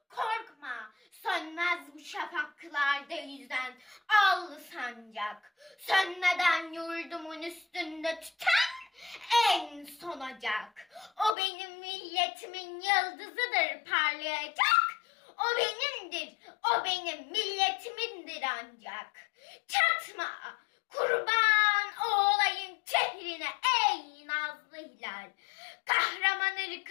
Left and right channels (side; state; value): right; drops out; at 11.4 s